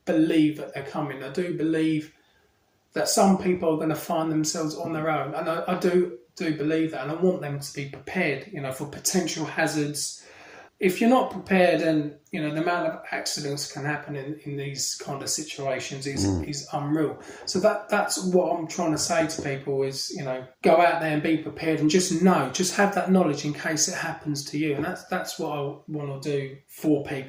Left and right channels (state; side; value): identical; both; correlation 1.00